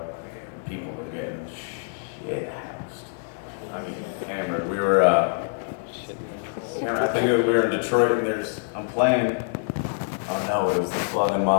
People were getting shit housed. I mean, hammered. We were, I think we were in Detroit, and I'm playing. Oh no, it was the Flock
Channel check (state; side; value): silent; right; 59 dB below the other